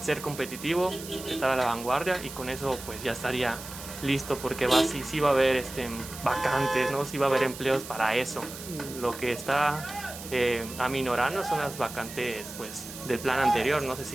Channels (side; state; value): right; noise; hiss, 12 dB below the sound